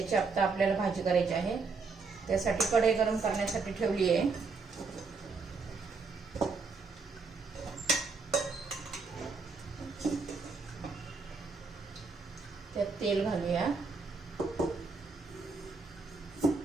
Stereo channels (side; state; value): left; quieter; 4.5 dB